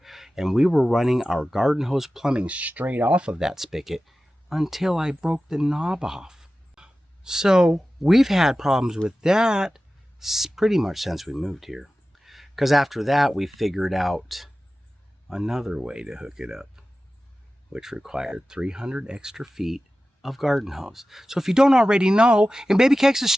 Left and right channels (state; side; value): normal; both; correlation 0.95